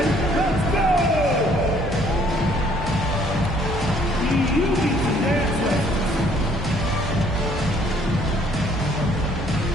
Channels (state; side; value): normal; both; correlation 0.62